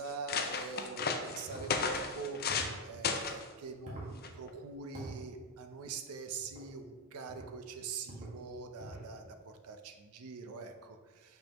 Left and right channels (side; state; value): both; normal; correlation 0.02